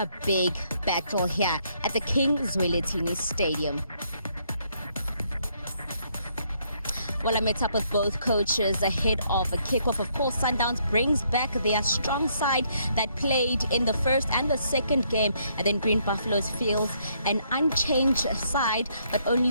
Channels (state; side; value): inverted; both; correlation -0.71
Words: big battle here at the King Zwelithini Stadium. Well, I met up with both coaches ahead of a kickoff. Of course, Sundowns brings back their strong side that played in the first and the second game, and then Green Buffaloes feels an unchanged side, but